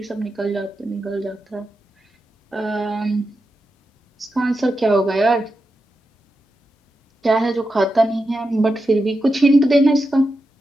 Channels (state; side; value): normal; both; correlation 0.88